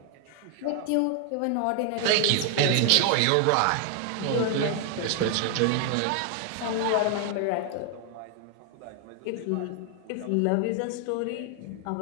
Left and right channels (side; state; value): both; different; correlation 0.00